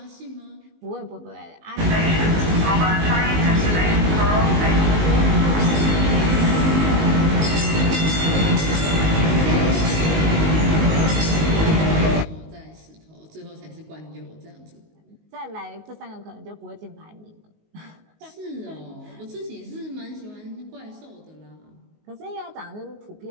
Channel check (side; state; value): left; late; 19 ms